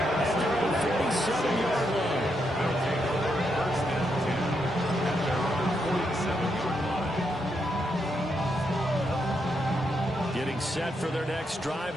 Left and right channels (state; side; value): normal; both; correlation 0.80